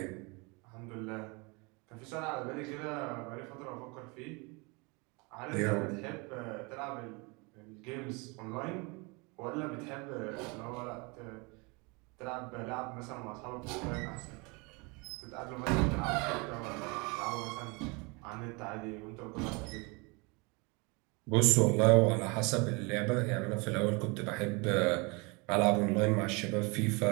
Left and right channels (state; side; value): quieter; left; 28.9 dB